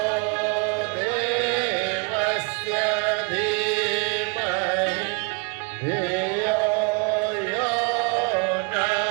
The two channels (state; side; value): quieter; left; 32.4 dB